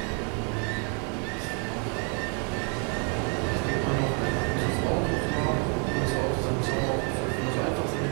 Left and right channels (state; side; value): quieter; left; 38.9 dB